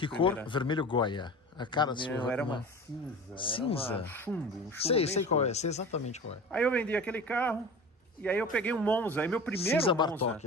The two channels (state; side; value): normal; both; correlation 0.35